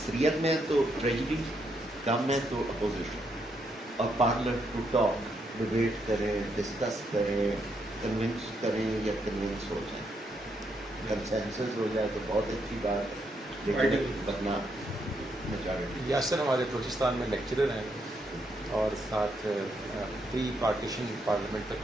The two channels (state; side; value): normal; both; correlation 0.77